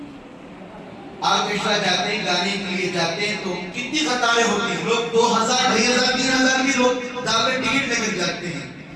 آرکیسٹرا جاتے ہیں، گانے کے لیے جاتے ہیں تو کتنی قطاریں ہوتی ہیں، لوگ 2000 2500 3000 بھی لوگ دعوے ٹکٹ لے کر جاتے ہیں،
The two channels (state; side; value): identical; both; correlation 1.00